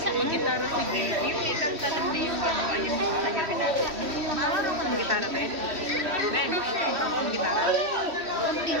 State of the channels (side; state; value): left; late; 3.1 ms